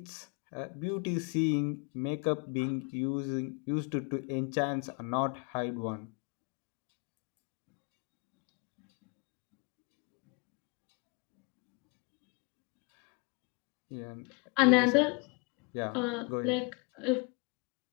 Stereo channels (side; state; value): right; quieter; 32.4 dB